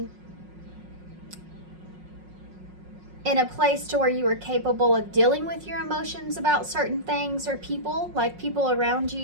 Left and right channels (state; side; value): late; left; 5.5 ms